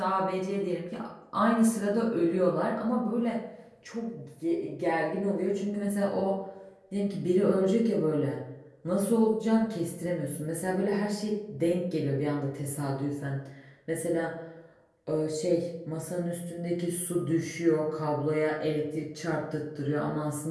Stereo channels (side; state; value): both; identical; correlation 1.00